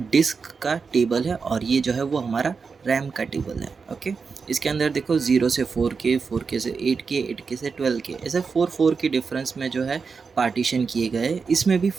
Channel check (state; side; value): quieter; left; 5.2 dB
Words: डिस्क का टेबल है और ये जो है वो हमारा रैम का टेबल है। ओके, इसके अंदर देखो 0 से 4K, 4K से 8K, 8K से 12K, ऐसे 4 के डिफरेंस में जो है पार्टीशन किए गए। इसमें भी